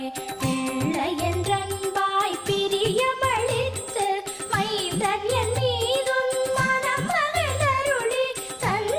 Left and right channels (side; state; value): both; identical; correlation 1.00